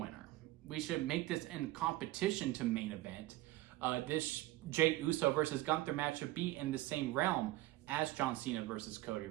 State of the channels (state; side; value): quieter; left; 16.8 dB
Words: We should make this in competition to main event. This Jey Uso versus Gunther match should be in the same realm as John Cena versus Cody